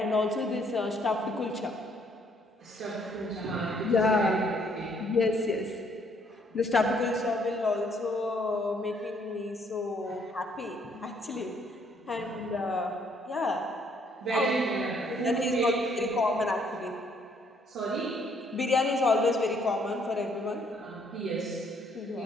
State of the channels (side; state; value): both; normal; correlation 0.66